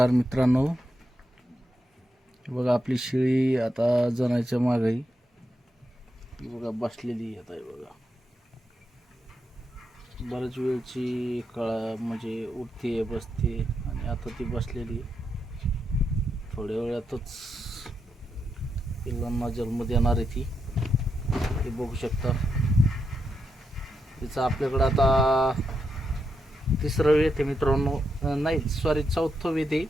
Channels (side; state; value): both; normal; correlation 0.84